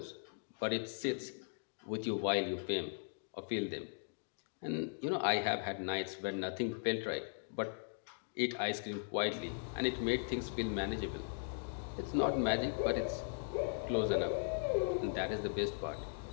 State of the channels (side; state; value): right; silent; digital silence